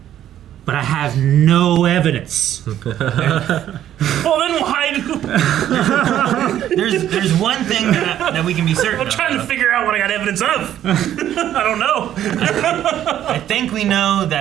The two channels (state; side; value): quieter; left; 11.4 dB